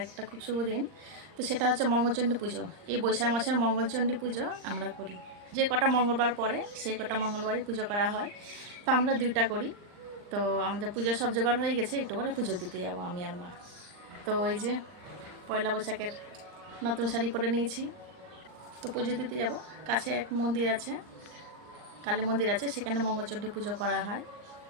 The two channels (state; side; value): late; left; 39 ms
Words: একটা খুব শুভ দিন। তো সেটা হচ্ছে মঙ্গলচণ্ডী পুজো। এই বৈশাখ মাসের মঙ্গলচণ্ডী পুজো আমরা করি। যে কটা মঙ্গলবার পরে সেই কটা মঙ্গলবারই পুজো করা হয়। তো আমরা 2টা করি। তো আমাদের পুজোর সব জোগাড় হয়ে গেছে, একটু করে পুজো দিতে যাবো আমি আর মা। তো ওই যে পয়লা বৈশাখের নতুন শাড়ি পরে নিয়েছি, তো পুজো দিতে যাব। কাছে এক মন্দির আছে, কালী মন্দির আছে, সেখানে মঙ্গলচণ্ডী পুজো করা হয়।